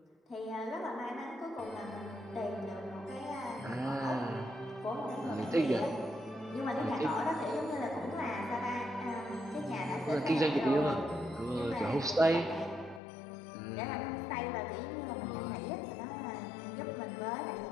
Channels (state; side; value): drops out; right; at 13.0 s